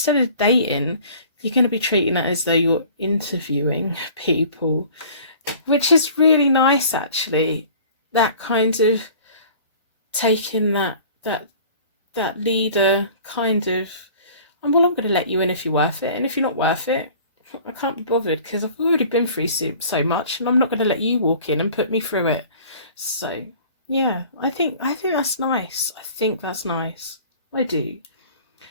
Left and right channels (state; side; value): inverted; both; correlation -0.47